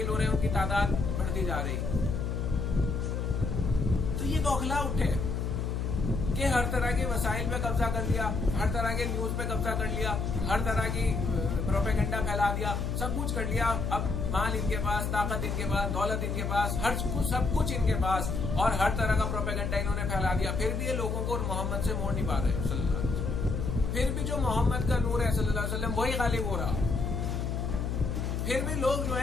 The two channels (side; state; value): left; noise; hum, 1 dB below the sound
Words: ہو رہے ہیں ان کی تعداد بڑھتی جا رہی. تو یہ بوکھلا اٹھے کہ ہر طرح کے وسائل پہ قبضہ کر لیا، ہر طرح کے نیوز پہ قبضہ کر لیا، ہر طرح کی پروپیگنڈا پھیلا دیا، سب کچھ کر لیا. اب مال ان کے پاس، طاقت ان کے پاس، دولت ان کے پاس، ہر کچھ سب کچھ ان کے پاس، اور ہر طرح کا پروپیگنڈا انہوں نے پھیلا دیا. پھر بھی یہ لوگوں کو محمد سے موڑ نہیں پا رہے صلی اللہ علیہ وسلم. پھر بھی جو محمد کا نور ہے صلی اللہ علیہ وسلم وہی غالب ہو رہا. پھر بھی لوگ جو